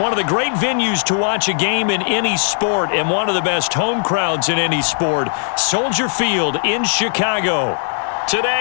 of the great venues to watch a game in any sport and one of the best home crowds in any sport, Soldier Field in Chicago.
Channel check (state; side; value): silent; right; 66 dB below the other